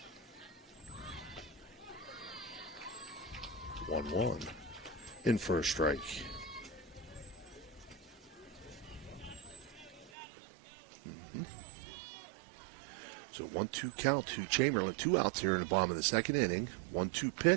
One in for a strike. So 1-2 count to Chamberlain. 2 outs here in the bottom of the second inning. 1-2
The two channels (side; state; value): left; drops out; at 10.1 s